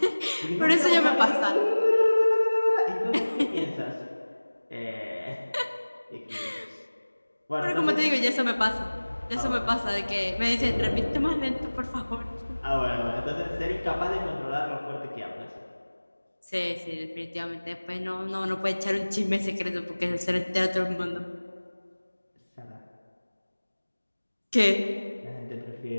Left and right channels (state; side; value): inverted; both; correlation -1.00